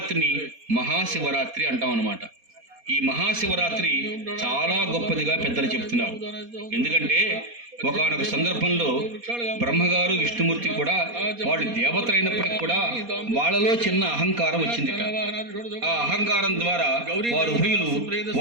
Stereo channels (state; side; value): late; left; 4.2 ms